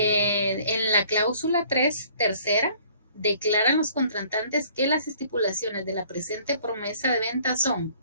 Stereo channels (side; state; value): both; inverted; correlation -0.56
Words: la cláusula 3, tercera, declaran los contratantes que las estipulaciones de la presente promesa de venta son